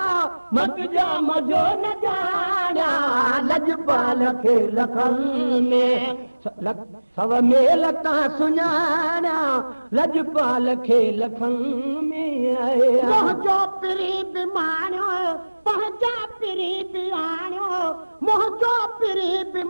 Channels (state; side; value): inverted; both; correlation -1.00